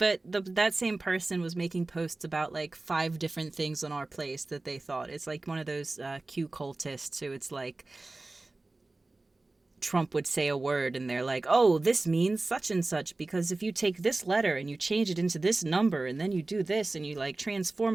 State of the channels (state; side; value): quieter; left; 3.1 dB